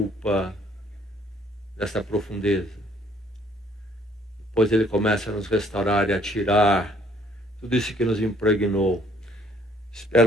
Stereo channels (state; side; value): normal; both; correlation 0.62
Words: dessa profundeza. Depois Ele começa a nos restaurar e a tirar tudo isso que nos impregnou.